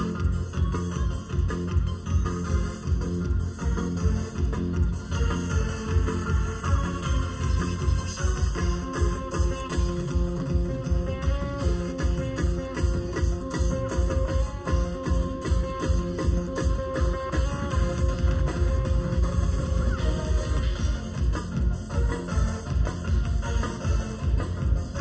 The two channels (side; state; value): both; identical; correlation 1.00